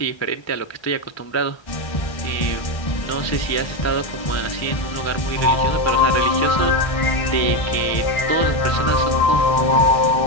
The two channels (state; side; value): late; right; 1.3 ms